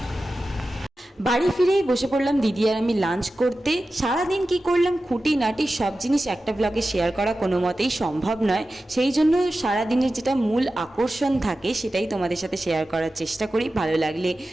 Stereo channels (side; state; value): both; normal; correlation 0.94